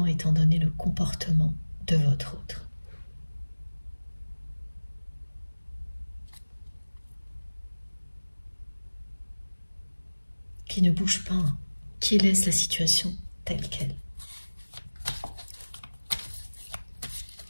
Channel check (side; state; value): both; inverted; correlation -1.00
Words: étant donné le comportement de votre autre. Qui ne bouge pas, qui laisse la situation telle qu'elle.